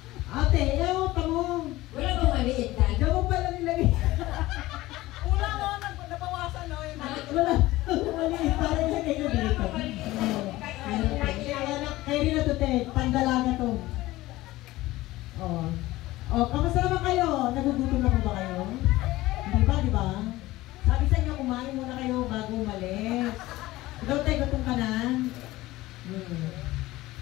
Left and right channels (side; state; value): right; quieter; 17.9 dB